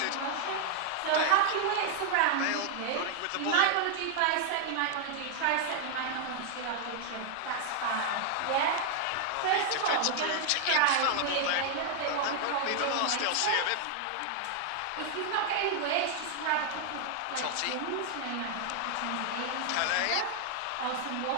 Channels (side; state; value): both; different; correlation 0.00